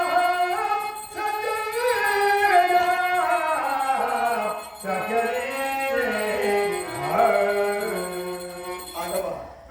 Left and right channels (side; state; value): both; identical; correlation 1.00